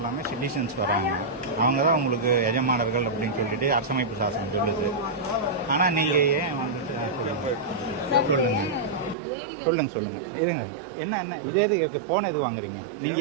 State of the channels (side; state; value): left; drops out; at 9.2 s